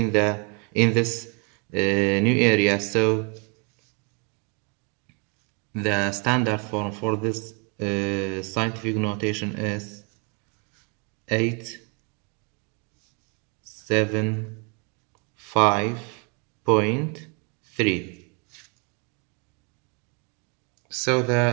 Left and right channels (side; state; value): left; quieter; 34.7 dB